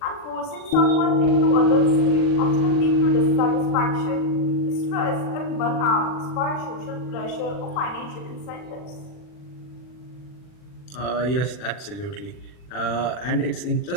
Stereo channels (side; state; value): right; late; 40 ms